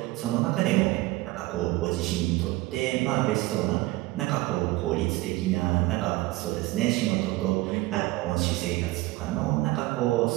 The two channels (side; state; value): left; quieter; 19.3 dB